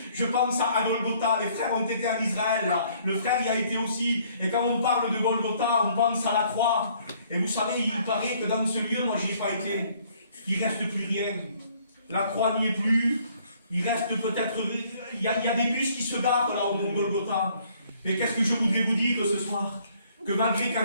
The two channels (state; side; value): inverted; both; correlation -0.62